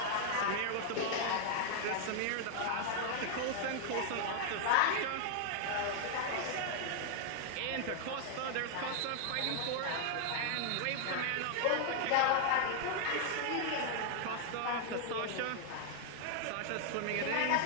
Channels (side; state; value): both; different; correlation 0.00